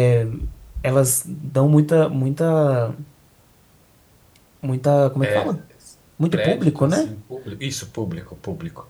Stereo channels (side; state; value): both; identical; correlation 1.00